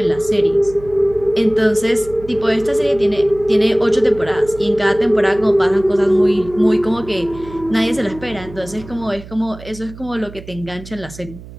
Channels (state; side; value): noise; right; hum, 17 dB below the sound